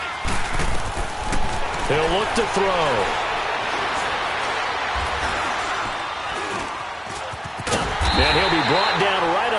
90! He'll look to throw. And he'll be brought down right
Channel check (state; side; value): identical; both; correlation 1.00